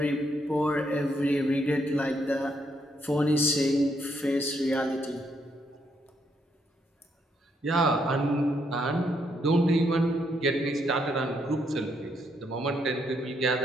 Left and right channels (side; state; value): both; normal; correlation 0.75